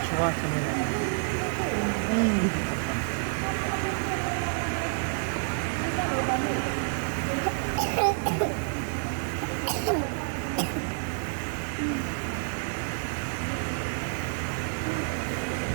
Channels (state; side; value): silent; left; 59 dB below the other